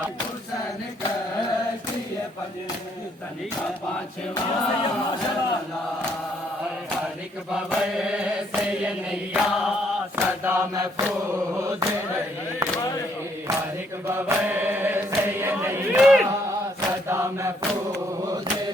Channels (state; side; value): normal; both; correlation 0.69